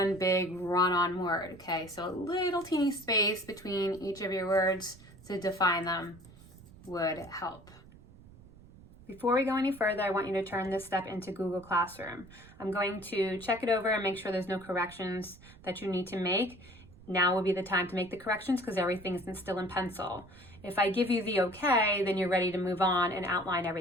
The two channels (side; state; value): right; noise; rumble, 21 dB below the sound